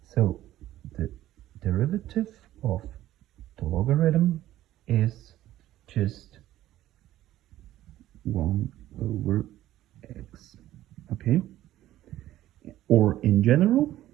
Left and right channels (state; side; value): quieter; left; 14.0 dB